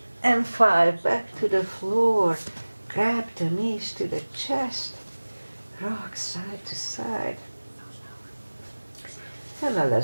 and 5. Back to the floor. Grab the knees to the chest. Rock side to side. And now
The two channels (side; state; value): both; inverted; correlation -1.00